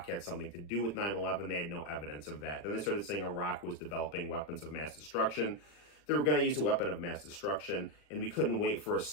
had something to do with 9/11. They had no evidence of that. Then they started saying Iraq was developing weapons of mass destruction. They were going to use a weapon of mass destruction, and we couldn't wait for a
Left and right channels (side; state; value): right; late; 40 ms